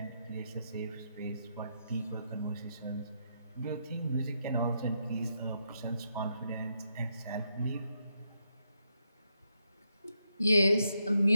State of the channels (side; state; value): both; inverted; correlation -0.82